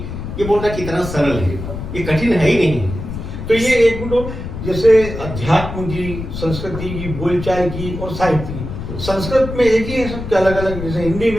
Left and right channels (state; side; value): noise; left; rumble, 7 dB below the sound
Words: ये बोलना कितना सरल है, ये कठिन है ही नहीं। तो ये एक मिनट, जैसे अध्यात्म की, संस्कृति की, बोलचाल की और साहित्य की, संस्कृत में एक ही है सबके अलग अलग? जैसे हिंदी